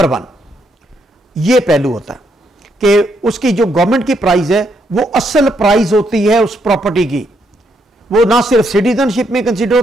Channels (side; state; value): both; normal; correlation 0.75